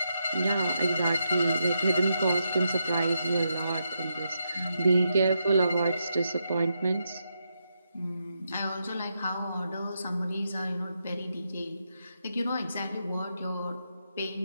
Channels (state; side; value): inverted; both; correlation -0.83